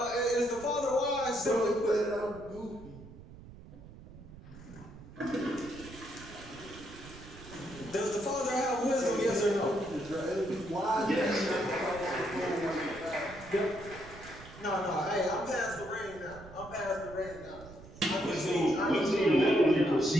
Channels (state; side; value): noise; right; rumble, 17 dB below the sound